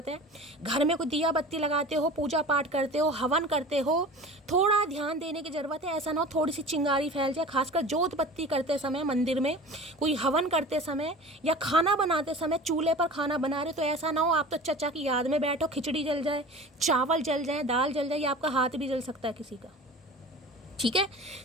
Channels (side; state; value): both; normal; correlation 0.38